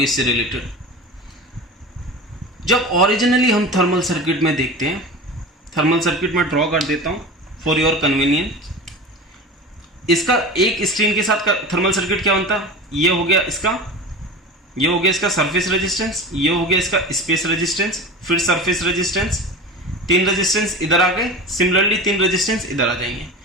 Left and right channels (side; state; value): both; normal; correlation 0.31